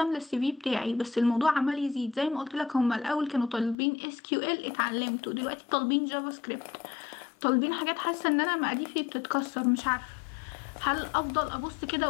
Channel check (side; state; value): right; drops out; at 3.8 s